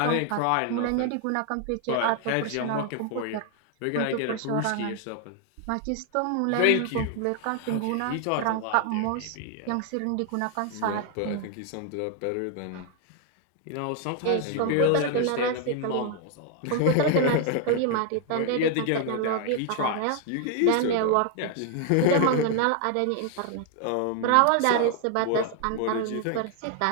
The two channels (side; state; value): both; different; correlation 0.00